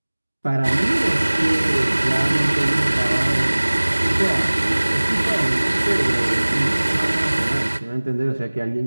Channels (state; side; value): inverted; both; correlation -1.00